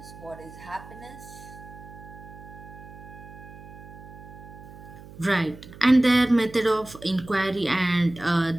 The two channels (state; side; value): noise; right; hum, 17 dB below the sound